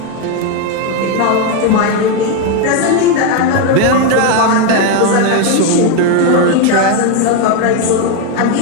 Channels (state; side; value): different; both; correlation 0.02